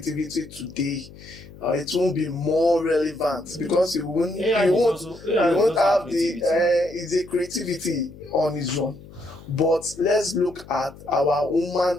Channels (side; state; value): left; noise; hum, 19 dB below the sound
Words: today, it won't be more relevant because you won't have the creativity on its own. But let's look at our